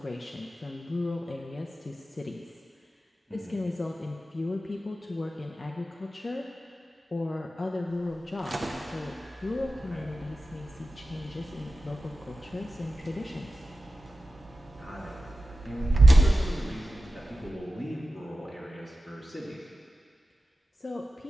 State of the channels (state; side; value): normal; both; correlation 0.93